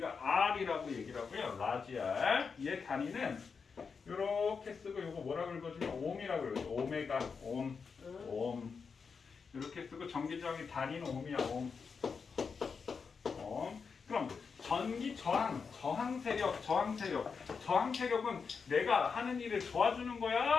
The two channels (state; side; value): quieter; right; 5.5 dB